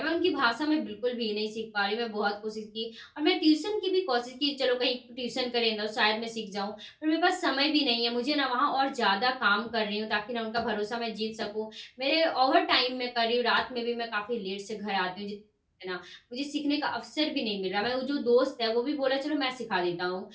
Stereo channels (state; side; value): identical; both; correlation 1.00